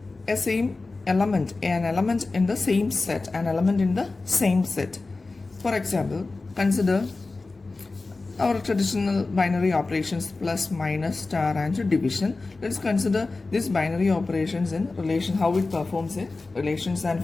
element, an element in the same set, an element in the same set. For example, consider our traditional binary operations plus, minus, star and division. Let's consider these binary operations in relation, how it performs in relations and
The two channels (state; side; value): quieter; right; 3.6 dB